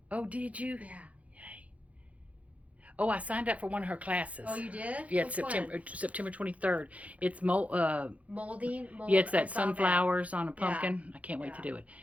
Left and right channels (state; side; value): late; left; 0.067 ms